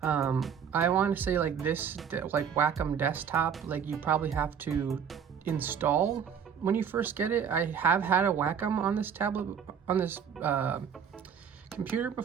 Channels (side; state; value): left; quieter; 7.5 dB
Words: I want to say this, Wacom desktop, you probably have to install when you first get it. I have had a Wacom on this tablet, on this computer